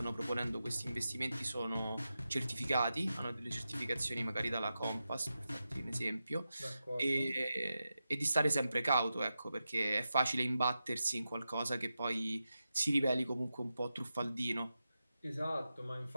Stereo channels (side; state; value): both; inverted; correlation -0.90